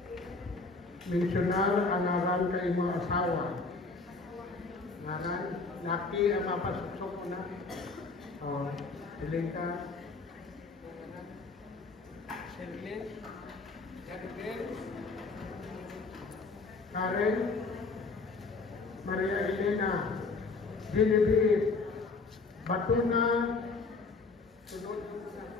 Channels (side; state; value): right; quieter; 4.0 dB